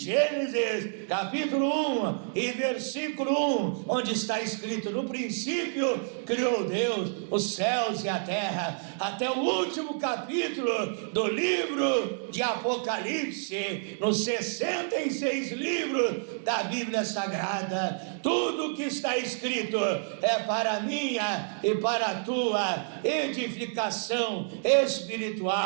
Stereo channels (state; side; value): silent; left; digital silence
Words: capítulo 1 e versículo 1, onde está escrito: no princípio criou Deus os céus e a terra, até o último capítulo do livro de Apocalipse, nos 66 livros da Bíblia Sagrada. Tudo que está escrito é para a minha e para a tua edificação